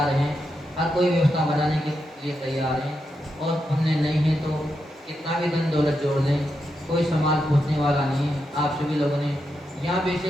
है, हर कोई व्यवस्था बनाने के लिए तैयार है। और पुण्य नहीं है तो कितना भी धन दौलत जोड़ लें, कोई संभाल पूछने वाला नहीं है। आप सभी लोगों ने यहाँ पे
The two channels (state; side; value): normal; both; correlation 0.85